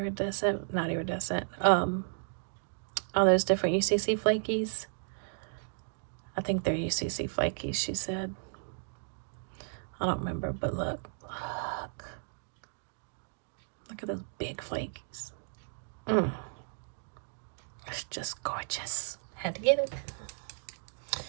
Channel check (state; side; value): silent; left; digital silence